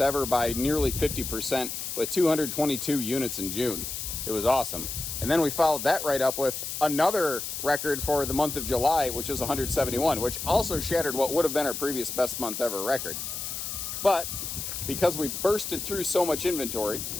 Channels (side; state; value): left; noise; hiss, 5 dB below the sound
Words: by nearly 50% with 222 units in June. It was awesome. And then we followed that right up with another record for the month of July, which is 171, which also shattered what would have been our previous best month ever record. But because we bursted through so much inventory,